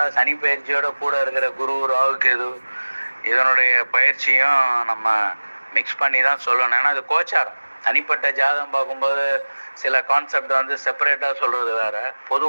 சனிப்பயிற்சியோட கூட இருக்கிற குரு, ராகு, கேது இதனுடைய பயிற்சியும் நம்ம மிக்ஸ் பண்ணி தான் சொல்லணும். ஏன்னா அது கோச்சாரம். தனிப்பட்ட ஜாதகம் பார்க்கும்போது சில கான்செப்ட் வந்து செப்பரேட்டாக சொல்கிறது வேறு.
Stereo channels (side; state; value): both; inverted; correlation -1.00